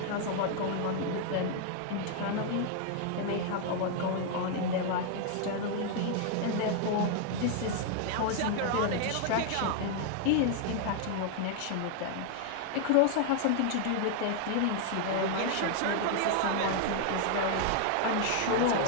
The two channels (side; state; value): both; different; correlation 0.00